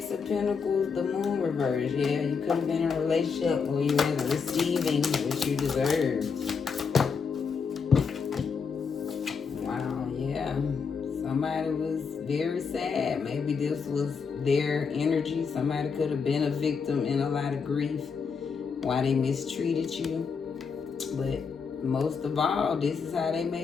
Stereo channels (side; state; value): right; quieter; 5.7 dB